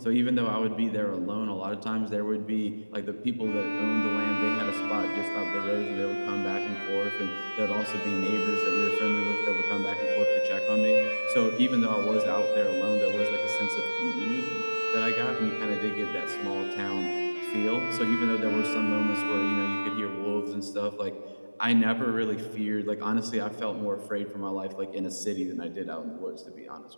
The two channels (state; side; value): inverted; both; correlation -1.00